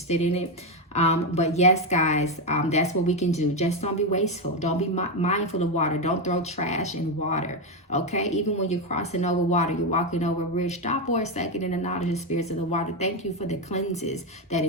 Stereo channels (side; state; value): both; normal; correlation 0.09